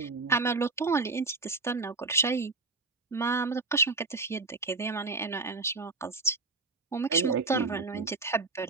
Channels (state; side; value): quieter; left; 3.6 dB